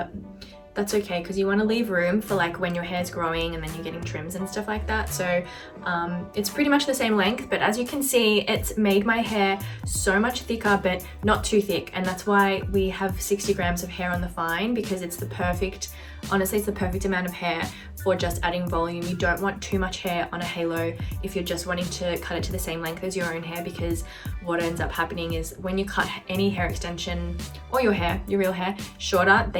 that's okay because you want to leave room for like when your hair's growing and then you're getting trims and stuff like that. So it's pretty much the same length, but as you can see, it's made my hair so much thicker, but not too thick. And that's why we have 60 grams of hair on the fine, because it's the perfect, honestly, it's the perfect amount of hair for just adding volume. You don't want too much hair on a halo if you're just wanting to cut it to the same length as your own hair, because what ends up happening is when you cut any hair extension or your hair, your real hair, shorter,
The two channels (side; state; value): both; identical; correlation 1.00